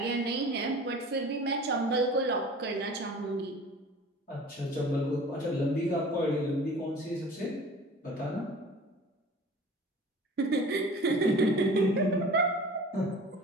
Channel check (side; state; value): both; normal; correlation 0.43